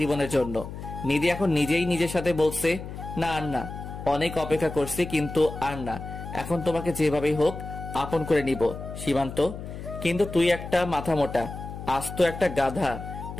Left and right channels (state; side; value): noise; left; hum, 10 dB below the sound